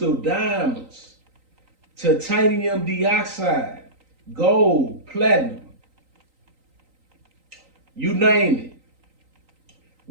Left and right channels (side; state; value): left; late; 3.9 ms